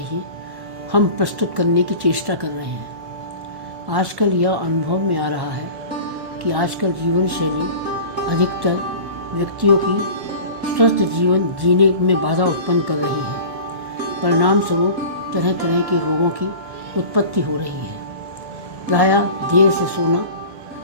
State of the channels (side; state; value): left; late; 1.1 ms